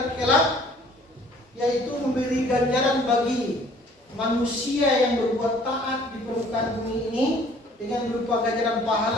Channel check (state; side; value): normal; both; correlation 0.55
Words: kelak, yaitu memberi ganjaran bagi manusia yang berbuat taat di permukaan bumi ini dengan berupa ganjaran